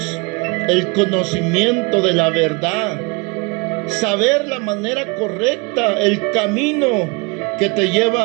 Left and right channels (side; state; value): left; quieter; 28.9 dB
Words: el conocimiento de la verdad, saber la manera correcta, el camino que te